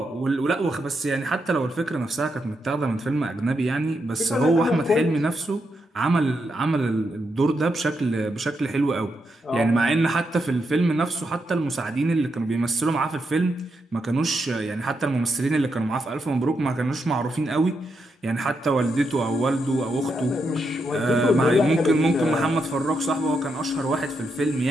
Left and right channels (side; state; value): both; normal; correlation 0.82